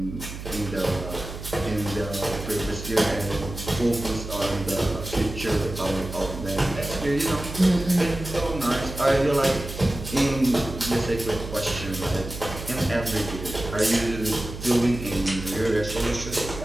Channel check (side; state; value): right; noise; hum, 10 dB below the sound